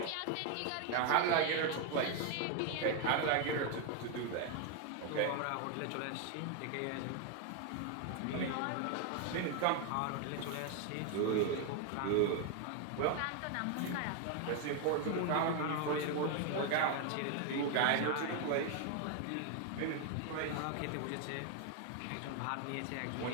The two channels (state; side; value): different; both; correlation 0.01